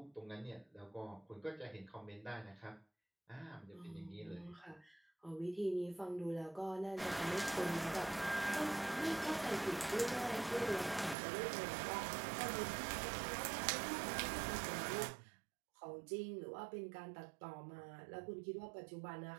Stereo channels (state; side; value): drops out; left; at 11.2 s